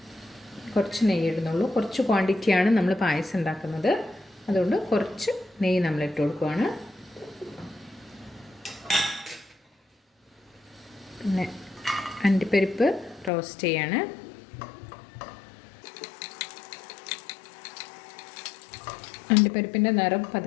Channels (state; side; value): drops out; right; at 13.3 s